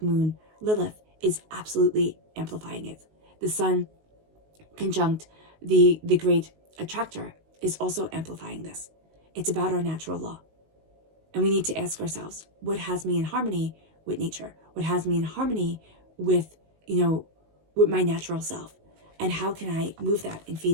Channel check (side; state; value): left; late; 19 ms